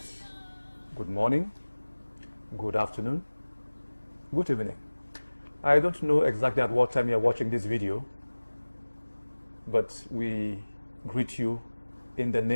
good morning, good afternoon, good evening. I don't know exactly at what time you're watching this video, but we greet you in the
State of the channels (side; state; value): both; inverted; correlation -1.00